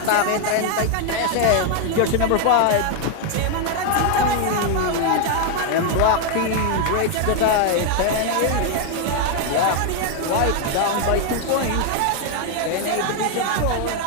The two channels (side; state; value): both; different; correlation 0.01